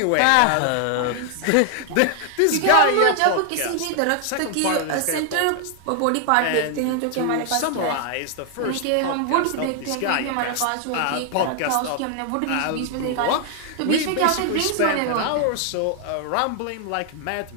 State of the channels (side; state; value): both; different; correlation 0.00